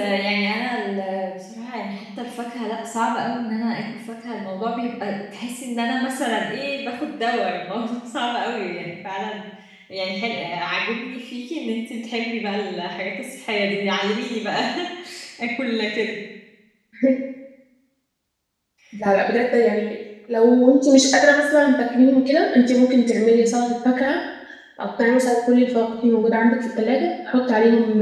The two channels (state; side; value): identical; both; correlation 1.00